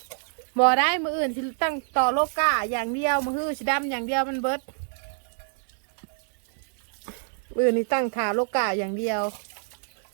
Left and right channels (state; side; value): silent; left; 61 dB below the other